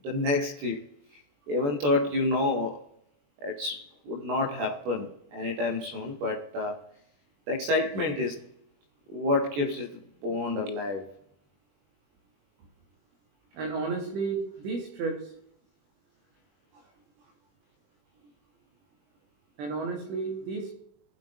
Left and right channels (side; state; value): left; late; 21 ms